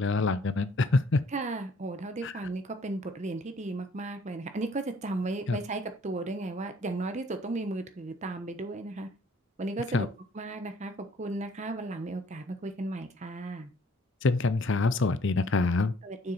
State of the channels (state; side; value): normal; both; correlation 0.60